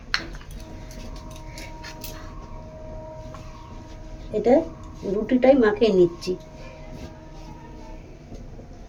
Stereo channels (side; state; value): both; identical; correlation 1.00